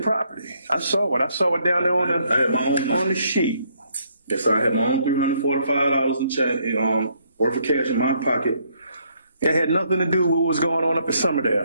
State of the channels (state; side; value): inverted; both; correlation -0.70